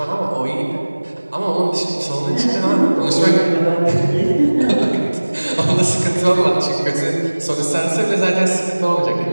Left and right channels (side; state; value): both; inverted; correlation -1.00